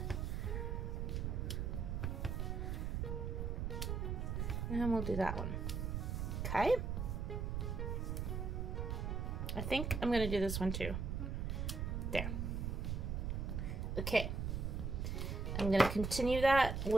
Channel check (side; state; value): right; noise; rumble, 1 dB below the sound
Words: And we'll do that one. Okay. I think I'm going to do this one too. There. Okay. I'm going to continue that